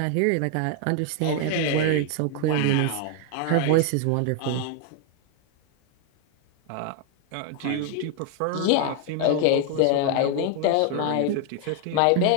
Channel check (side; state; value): both; different; correlation 0.00